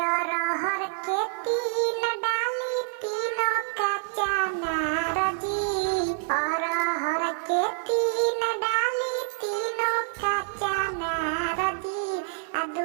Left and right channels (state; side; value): silent; left; 60 dB below the other